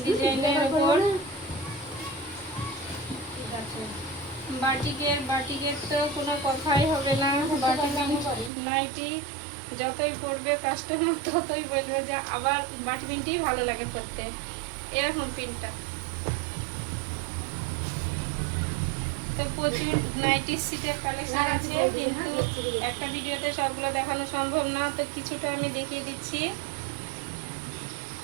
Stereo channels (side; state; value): left; drops out; at 8.5 s